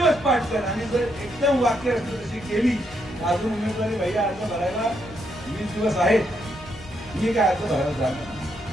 पाठ करा आणि जर एकदम वाक्य रचना तशी केली अजून उमेदवारी भैया अर्ज भरायला 20 दिवस आहेत, मी काय अर्ज भरायला जाणार.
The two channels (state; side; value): normal; both; correlation 0.77